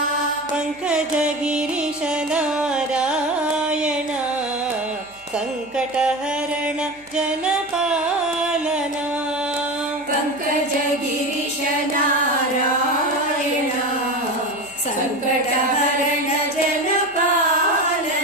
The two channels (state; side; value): noise; right; hum, 29 dB below the sound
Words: ಪಂಕಜ ಗಿರೀಶ ನಾರಾಯಣ ಸಂಕಟಹರಣ ಜನಪಾಲನ. ಪಂಕಜ ಗಿರೀಶ ನಾರಾಯಣ ಸಂಕಟಹರಣ